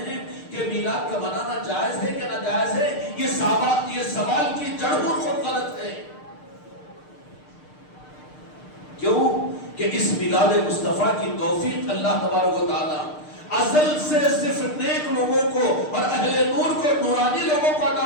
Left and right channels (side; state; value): right; late; 6.6 ms